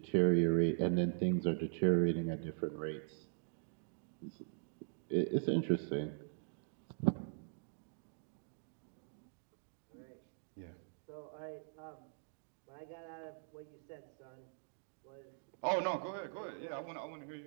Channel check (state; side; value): silent; left; digital silence